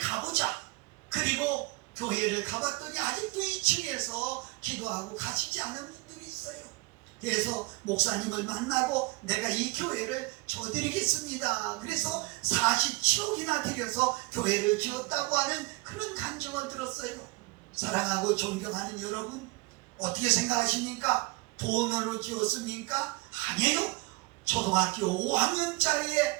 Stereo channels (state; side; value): quieter; left; 23.7 dB